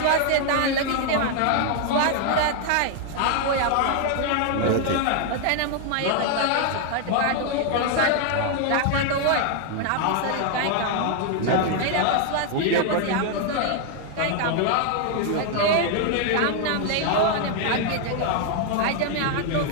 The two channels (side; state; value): both; different; correlation 0.00